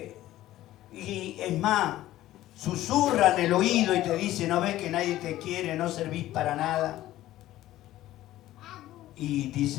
y es más, susurra en el oído y te dice, no ves que nadie te quiere, no servís para nada. Y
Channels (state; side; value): quieter; right; 14.7 dB